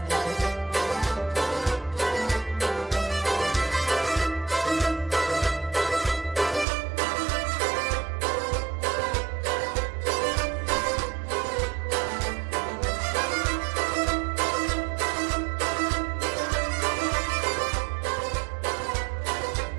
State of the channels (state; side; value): drops out; left; at 6.7 s